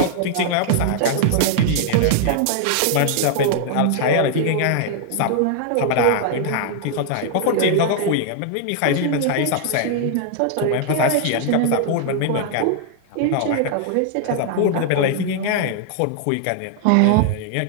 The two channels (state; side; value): different; both; correlation 0.00